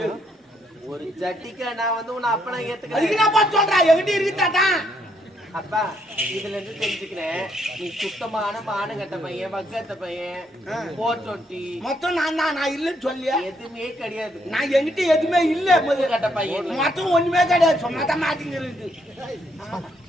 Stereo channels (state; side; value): normal; both; correlation 0.73